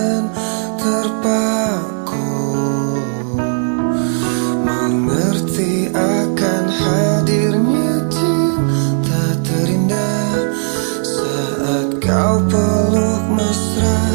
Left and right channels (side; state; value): left; silent; 69 dB below the other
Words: terpaku, mengerti akan hadirnya cinta terindah saat kau peluk